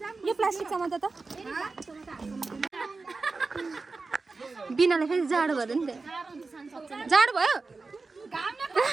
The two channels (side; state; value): left; quieter; 3.9 dB